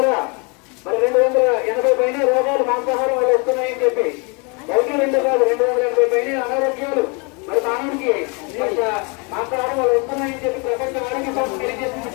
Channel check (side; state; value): right; quieter; 32.6 dB